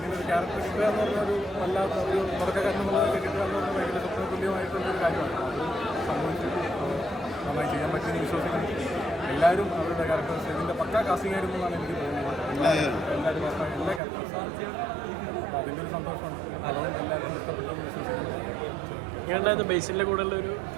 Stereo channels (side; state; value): left; drops out; at 14.0 s